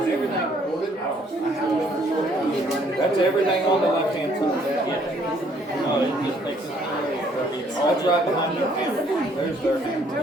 That's everything on the left-hand side. Yeah. No, it just takes. That's right behind your camera. There's their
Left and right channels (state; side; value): normal; both; correlation 0.64